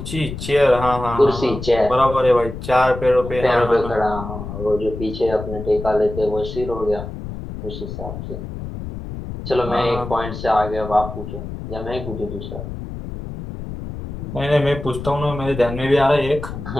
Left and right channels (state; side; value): noise; left; rumble, 9 dB below the sound